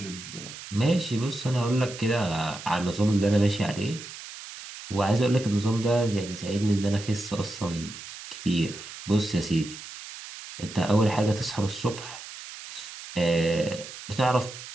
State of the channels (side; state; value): right; noise; hiss, 13 dB below the sound